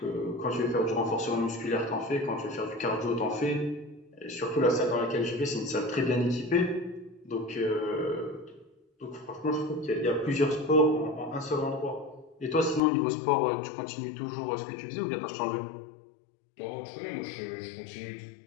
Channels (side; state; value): right; drops out; at 12.8 s